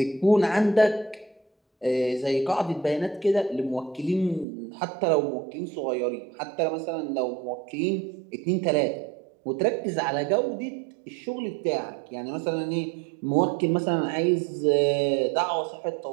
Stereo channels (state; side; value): drops out; left; at 4.5 s